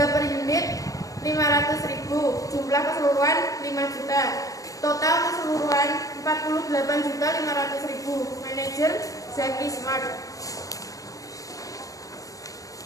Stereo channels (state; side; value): late; right; 0.17 ms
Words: per unit 500.000, jumlah keseluruhan 5 juta. Total keseluruhan 48.500.000. Manajer Zaki Smart.